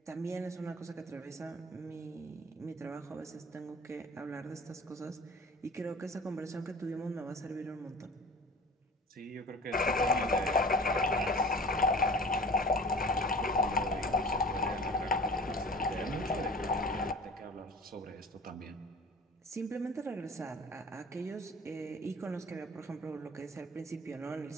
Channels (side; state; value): both; normal; correlation 0.42